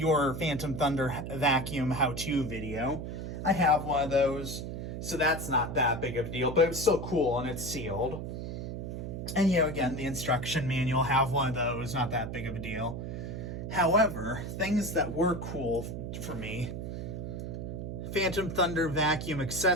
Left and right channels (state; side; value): noise; right; hum, 6 dB below the sound